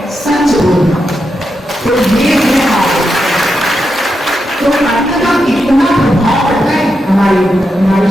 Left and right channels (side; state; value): both; normal; correlation 0.86